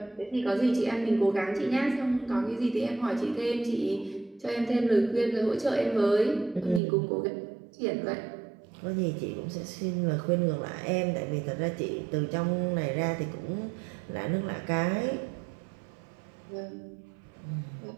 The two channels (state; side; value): drops out; left; at 6.8 s